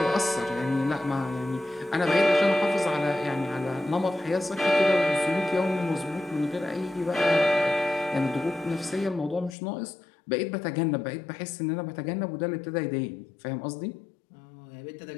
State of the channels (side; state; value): right; drops out; at 9.6 s